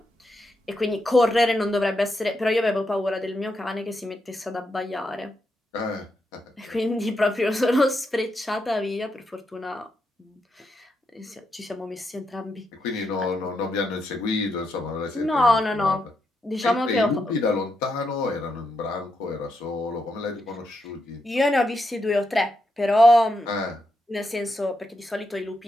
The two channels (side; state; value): both; normal; correlation 0.82